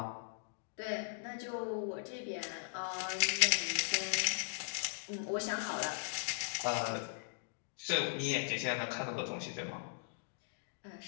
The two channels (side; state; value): right; silent; digital silence